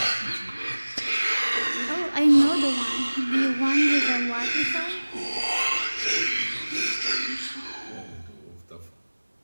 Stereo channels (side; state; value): both; inverted; correlation -1.00